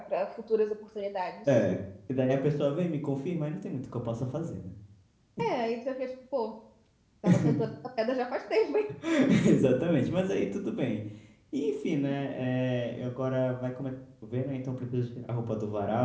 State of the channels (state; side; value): identical; both; correlation 1.00